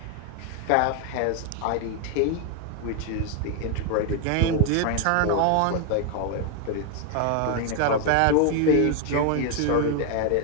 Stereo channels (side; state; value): both; different; correlation 0.01